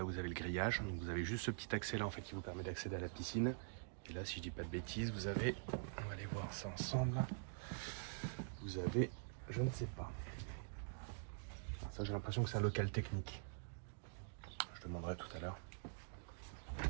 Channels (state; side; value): silent; left; digital silence